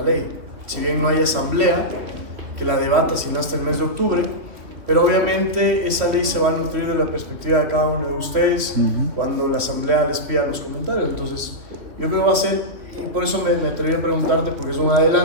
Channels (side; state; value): left; late; 3.1 ms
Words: ley. Si bien no hay asamblea que la debata sino hasta el mes de octubre, pero obviamente esa ley se va a nutrir de la perspectiva de cada uno de ustedes cuando la asamblea les pida los comentarios. Entonces yo creo que va a ser, y por eso me atreví a preguntarte porque es un